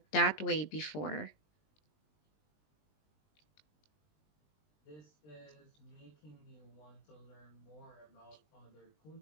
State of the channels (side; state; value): right; late; 20 ms